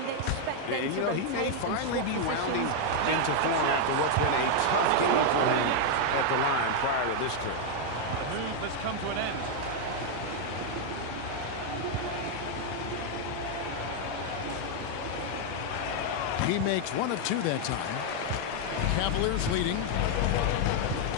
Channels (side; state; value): both; different; correlation 0.00